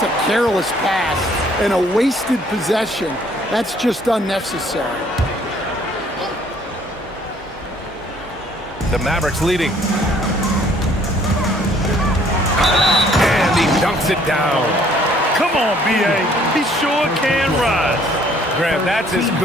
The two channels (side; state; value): both; normal; correlation 0.60